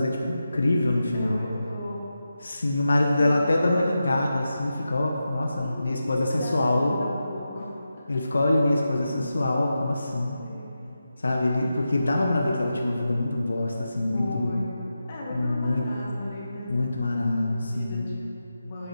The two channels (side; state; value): both; inverted; correlation -0.90